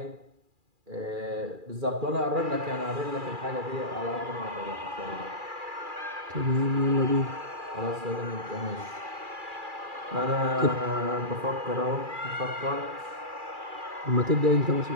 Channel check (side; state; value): left; late; 2.4 ms